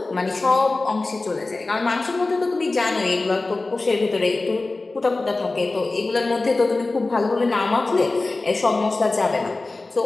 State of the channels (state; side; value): quieter; right; 3.3 dB